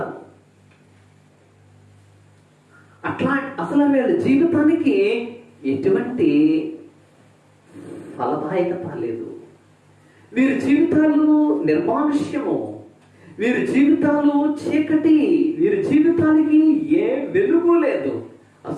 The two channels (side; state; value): both; identical; correlation 1.00